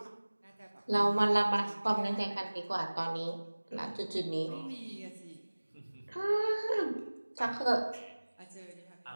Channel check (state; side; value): inverted; both; correlation -1.00